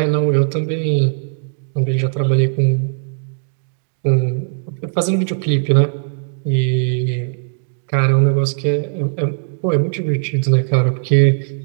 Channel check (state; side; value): silent; left; digital silence